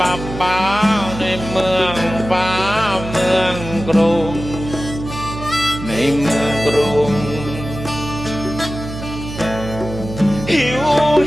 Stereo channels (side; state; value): right; noise; hum, 10 dB below the sound